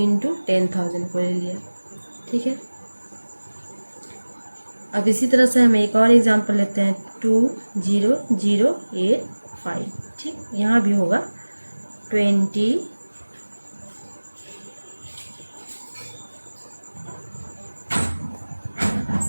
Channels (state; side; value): inverted; both; correlation -1.00